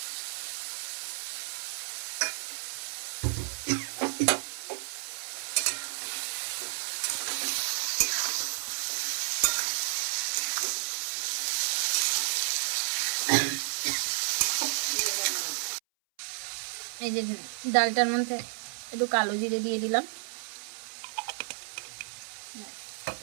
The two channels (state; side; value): silent; left; 57 dB below the other